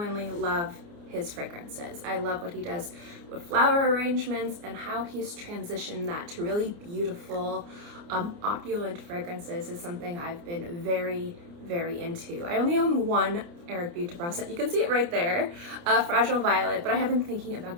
love his fragrances. I love what he does with flower arrangements and how he's transitioned that to really beautiful, opulent fragrances is something I've been very into. I only own one Eric Buterbaugh scent. You can see it right there, Fragile Violet, but I have been thinking about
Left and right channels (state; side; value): late; left; 29 ms